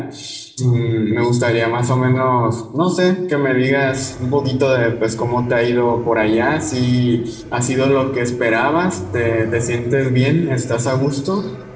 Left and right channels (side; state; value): both; identical; correlation 1.00